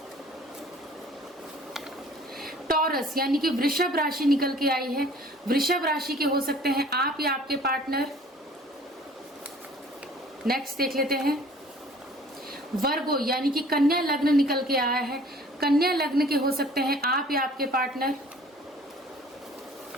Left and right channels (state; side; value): normal; both; correlation 0.51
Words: टॉरस यानी कि वृषभ राशि निकल के आई है। वृषभ राशि के हो सकते हैं आप या आपके पार्टनर। नेक्स्ट देख लेते हैं वर्गो यानी कि कन्या लग्न निकल के आया है। कन्या लग्न के हो सकते हैं आप या आपके पार्टनर।